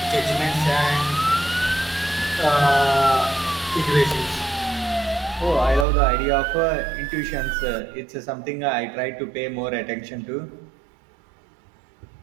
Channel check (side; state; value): left; drops out; at 5.9 s